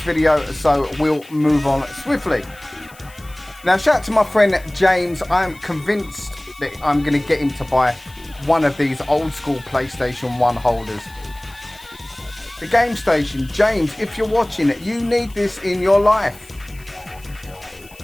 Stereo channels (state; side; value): noise; left; hiss, 24 dB below the sound